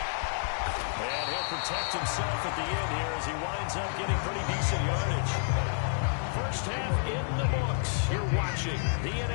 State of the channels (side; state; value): right; silent; 58 dB below the other